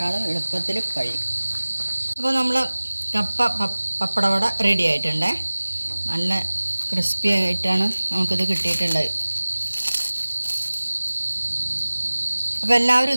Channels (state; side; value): inverted; both; correlation -1.00